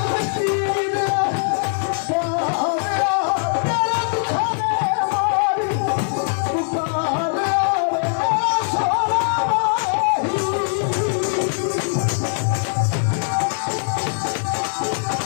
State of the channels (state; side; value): silent; right; digital silence